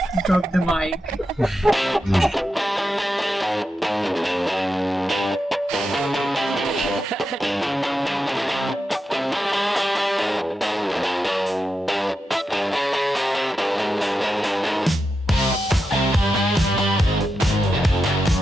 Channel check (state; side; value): normal; both; correlation 0.88